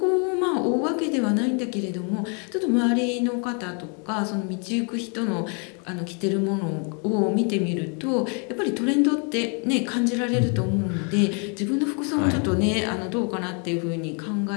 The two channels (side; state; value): right; quieter; 38.4 dB